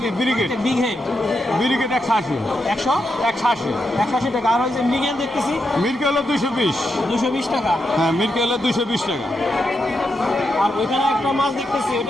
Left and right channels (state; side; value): normal; both; correlation 0.84